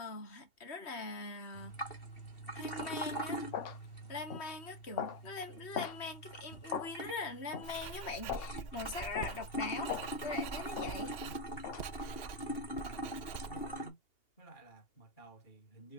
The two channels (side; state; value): right; late; 2.8 ms